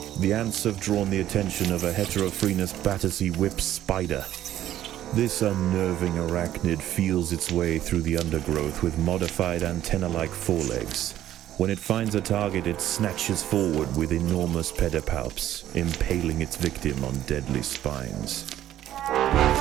The ants have drawn the attention of a Heterophrenius Battersea whip spider. This unnerving arachnid feels its way through the undergrowth with modified antenna-like forelegs. When it finds a target, it snatches forward with enormous pedipalps, impaling its victim on deadly spines.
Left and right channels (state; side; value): quieter; left; 12.4 dB